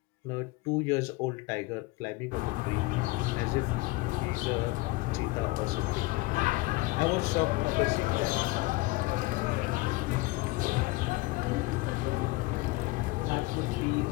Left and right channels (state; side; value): quieter; right; 21.7 dB